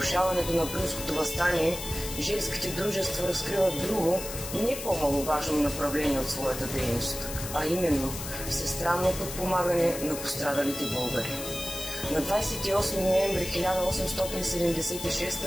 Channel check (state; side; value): noise; left; hiss, 8 dB below the sound